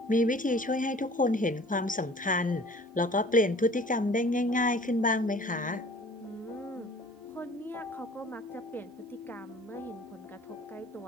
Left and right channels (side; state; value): both; normal; correlation 0.50